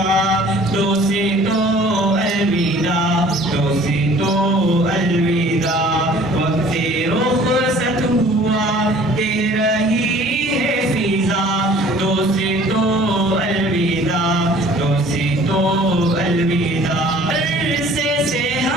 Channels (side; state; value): both; normal; correlation 0.51